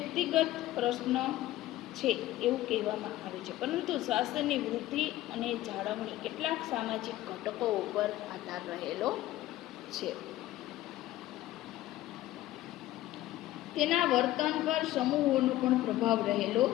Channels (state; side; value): quieter; right; 15.3 dB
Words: પ્રશ્ન છે એવું કહેવામાં આવે છે, પરંતુ સ્વાસ્થ્યની વૃદ્ધિ અને જાળવણી કેટલાક સામાજિક ઘટકો ઉપર આધાર રહેલો છે. તેના વર્તન પર સમૂહોનો પણ પ્રભાવ રહેલો